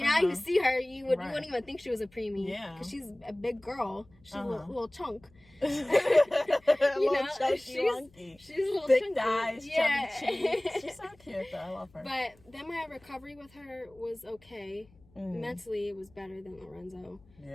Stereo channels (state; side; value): noise; left; hum, 29 dB below the sound